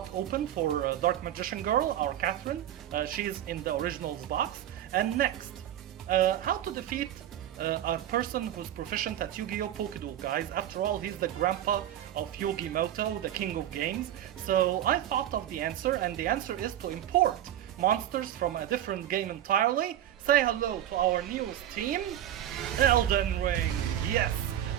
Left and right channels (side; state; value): left; quieter; 11.7 dB